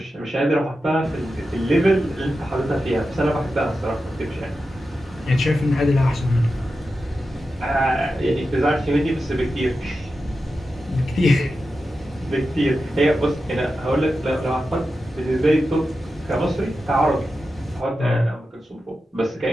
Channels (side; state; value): both; normal; correlation 0.91